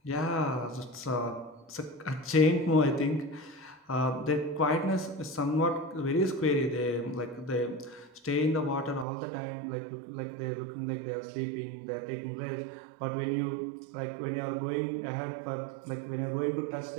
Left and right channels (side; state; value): left; drops out; at 9.1 s